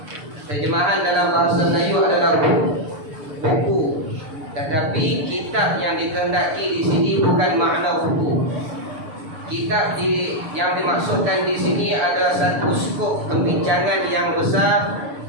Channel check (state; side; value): late; left; 6.8 ms